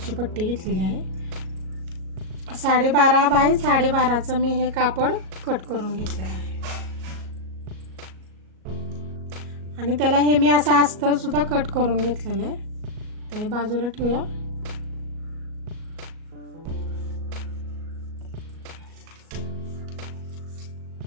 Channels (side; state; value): left; late; 38 ms